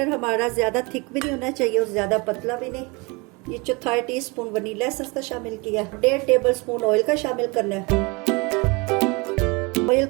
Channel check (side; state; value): left; quieter; 27.7 dB